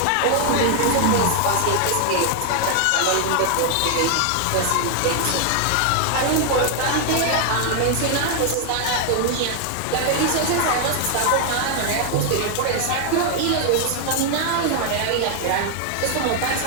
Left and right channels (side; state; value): both; different; correlation 0.00